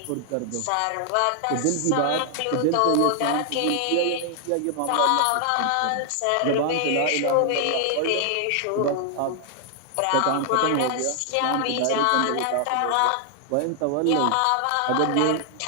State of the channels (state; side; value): different; both; correlation 0.00